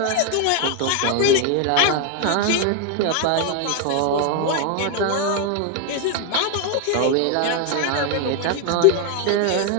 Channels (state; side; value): different; both; correlation 0.01